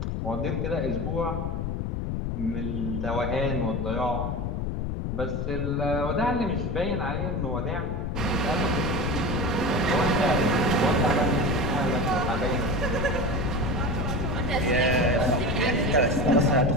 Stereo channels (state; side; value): noise; left; rumble, 2 dB below the sound